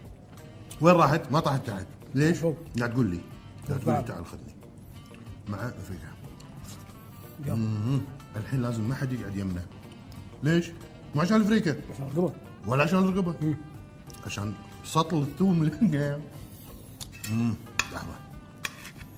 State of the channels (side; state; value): both; identical; correlation 1.00